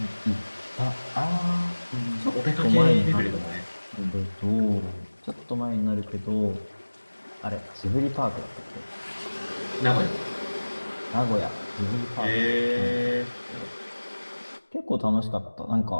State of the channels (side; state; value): both; inverted; correlation -1.00